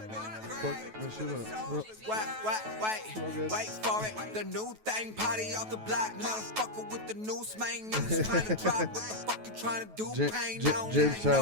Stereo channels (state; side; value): late; left; 9.3 ms